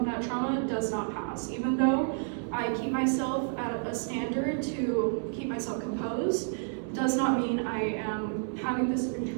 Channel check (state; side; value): silent; left; 58 dB below the other